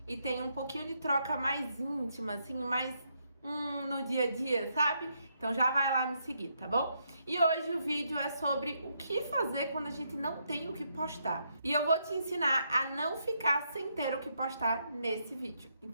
e tem um pouquinho de troca mais íntima, assim, mais no dia a dia, sabe? Então já vai lá me seguir, tá bom? E hoje o vídeo é sobre o que fazer quando a gente não tem o que postar. E eu vou te ensinar a não ficar sem ter o que postar nesse vídeo.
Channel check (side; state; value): both; inverted; correlation -0.77